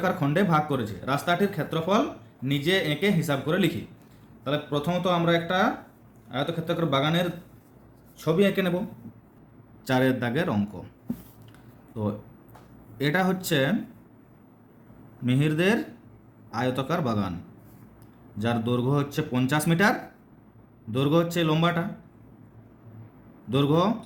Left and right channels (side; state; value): both; identical; correlation 1.00